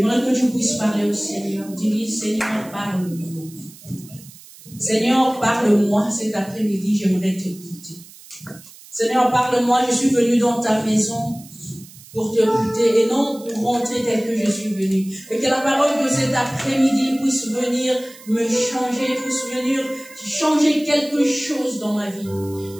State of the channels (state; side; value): noise; right; hiss, 20 dB below the sound